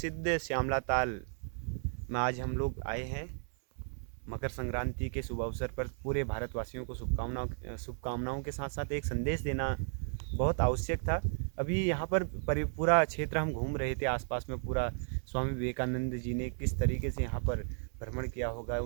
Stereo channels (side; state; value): left; silent; 55 dB below the other